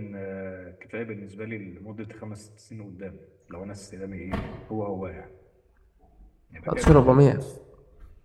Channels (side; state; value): both; identical; correlation 1.00